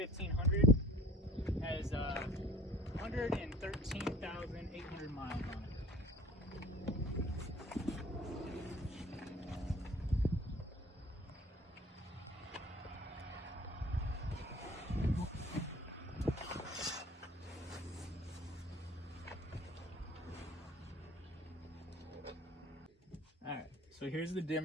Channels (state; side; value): normal; both; correlation 0.46